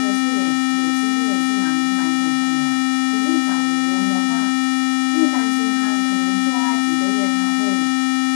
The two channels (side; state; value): right; silent; digital silence